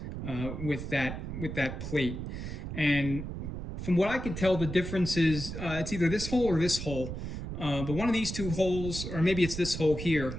with that plate. And from what I could tell, the difference is it's either this hole or this hole. But one of these two holes, or maybe it's this hole here,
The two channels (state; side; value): noise; right; rumble, 6 dB below the sound